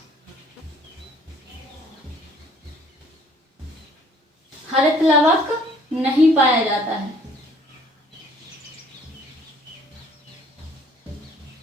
हरित लवक नहीं पाया जाता है।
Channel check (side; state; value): both; normal; correlation 0.58